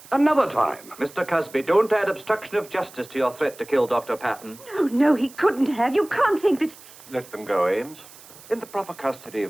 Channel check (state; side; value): noise; right; hiss, 21 dB below the sound